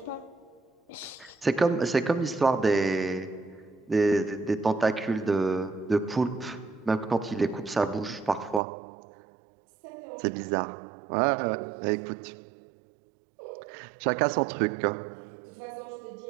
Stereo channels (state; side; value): drops out; left; at 8.6 s